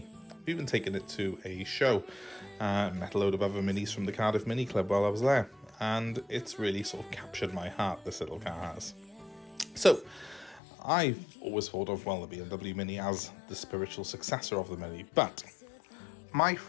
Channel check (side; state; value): right; drops out; at 10.6 s